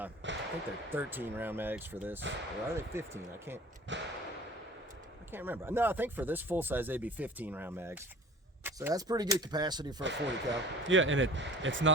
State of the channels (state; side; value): normal; both; correlation 0.44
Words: think they're 13 round mags for this. Or are they 15? I can't remember. No, I think for this full size, they'd be 15 round mags. So that's pretty good capacity for a 40 cal. Yeah, and it's